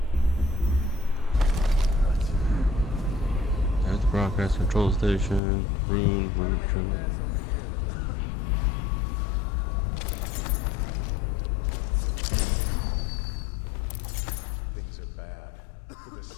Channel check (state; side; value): drops out; right; at 5.4 s